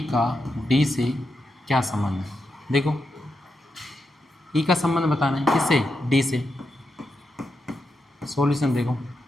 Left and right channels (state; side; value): normal; both; correlation 0.86